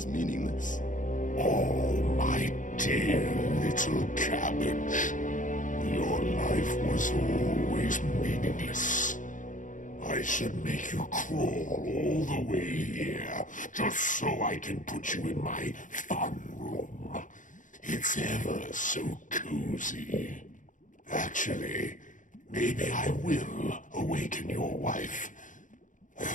meaningless. Oh, my dear little cabbage. Your life was always meaningless. I should make you crawl all the way here, just so I can put you in my fun room. It's ever so cozy. Actually, maybe I will awaken your wife,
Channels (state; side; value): late; right; 0.37 ms